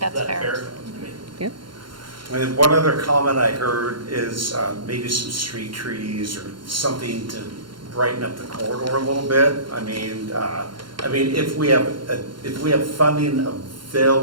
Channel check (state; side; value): late; left; 0.72 ms